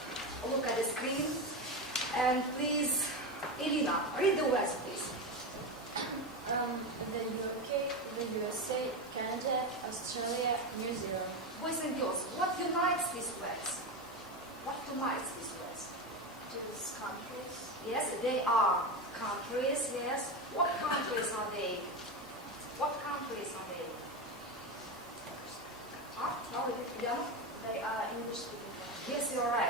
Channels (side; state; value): both; normal; correlation 0.17